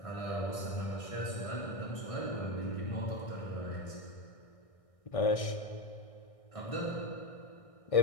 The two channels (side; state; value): right; late; 1.6 ms